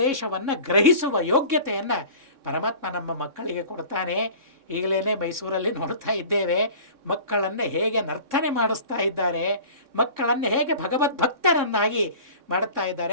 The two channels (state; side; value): late; left; 3.6 ms